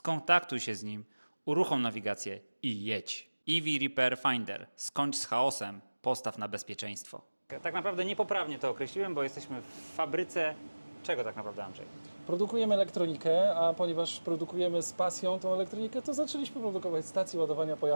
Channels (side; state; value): both; inverted; correlation -1.00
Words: się z nim, uruchom nawigację i jedź. EV Repair Finder. Skończ z chaosem, postaw na bezpieczeństwo. Tak naprawdę niepoprawnie to określiłem, bo jesteśmy w fabryce czego tak naprawdę, Andrzej? Produkujemy elektronikę, a ponieważ produkujemy z pasją tą elektronikę, to zaczęliśmy produkować stacje ładowania